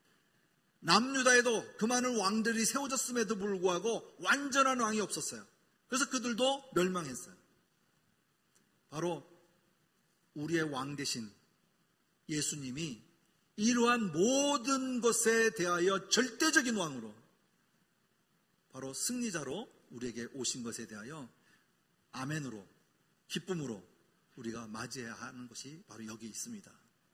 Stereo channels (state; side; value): identical; both; correlation 1.00